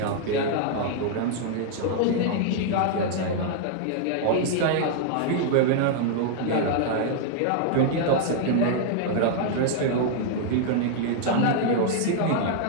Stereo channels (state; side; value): different; both; correlation -0.01